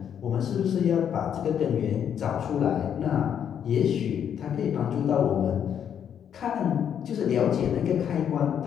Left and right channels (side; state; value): right; quieter; 8.7 dB